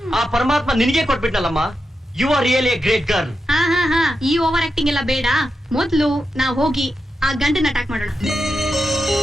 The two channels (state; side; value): normal; both; correlation 0.88